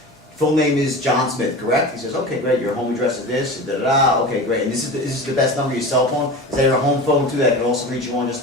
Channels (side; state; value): both; normal; correlation 0.31